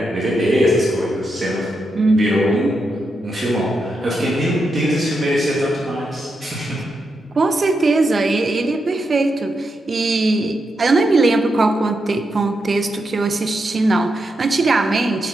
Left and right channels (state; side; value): normal; both; correlation 0.85